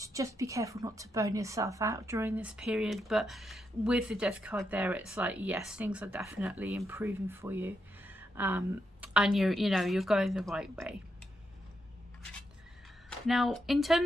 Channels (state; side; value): normal; both; correlation 0.82